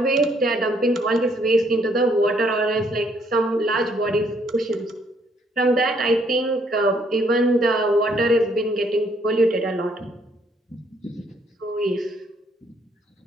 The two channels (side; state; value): both; normal; correlation 0.68